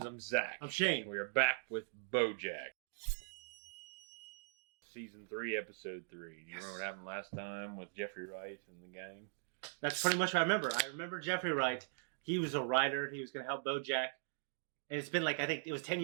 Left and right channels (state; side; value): silent; left; digital silence